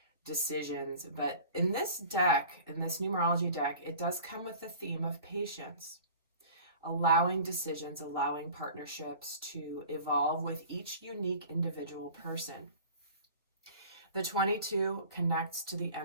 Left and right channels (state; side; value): inverted; both; correlation -0.43